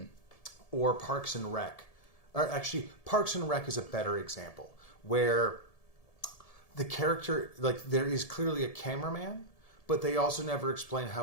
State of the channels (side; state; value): right; late; 1.7 ms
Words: or Parks and Rec. Or actually, Parks and Rec is a better example where the character, like there is clearly a cameraman, but they also never explain